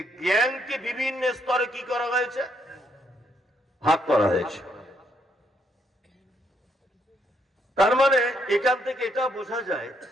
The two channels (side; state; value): both; normal; correlation 0.74